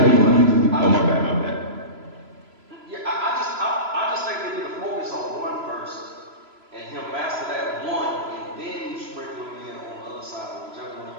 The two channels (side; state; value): left; late; 3.0 ms